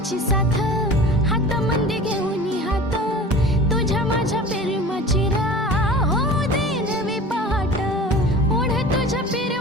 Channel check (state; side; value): normal; both; correlation 0.39